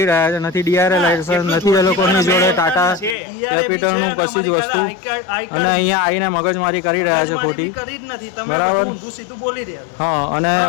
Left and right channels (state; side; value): drops out; right; at 3.2 s